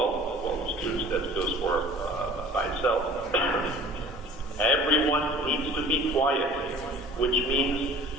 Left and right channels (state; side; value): normal; both; correlation 0.46